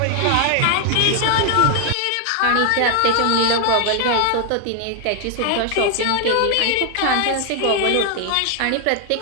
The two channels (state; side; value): different; both; correlation 0.00